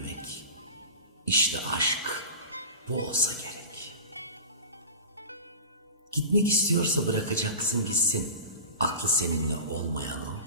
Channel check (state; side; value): inverted; both; correlation -0.32